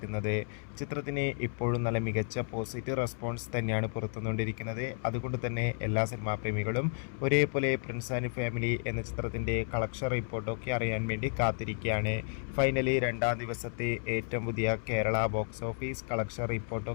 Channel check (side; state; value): right; silent; 56 dB below the other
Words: ചിത്രത്തിന് ഇപ്പോഴും നല്ല മികച്ച പോസിറ്റീവ് റെസ്പോൺസ് തന്നെയാണ് പുറത്തുകൊണ്ടിരിക്കുന്നത്. അതുകൊണ്ട് തന്നെ എല്ലാ സിനിമാ പ്രേമികളും ഒരേപോലെ പ്രിൻസ് ആൻഡ് ഫാമിലി എന്ന ചിത്രത്തിൻ്റെ കളക്ഷൻ റിപ്പോർട്ടൊക്കെ അറിയാൻ വേണ്ടി കാത്തിരിക്കുകയാണ്. ഫൈനലി രണ്ടാം ദിവസത്തെ ഏറ്റവും പുതിയ കേരള ബോക്സ് ഓഫീസ് കളക്ഷൻ